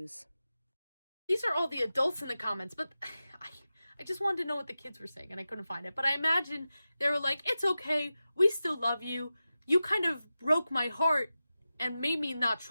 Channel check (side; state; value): both; inverted; correlation -0.94